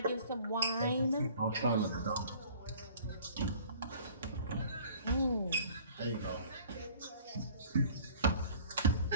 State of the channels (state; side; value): inverted; both; correlation -0.50